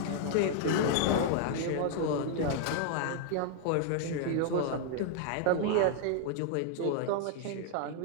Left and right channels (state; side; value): different; both; correlation -0.01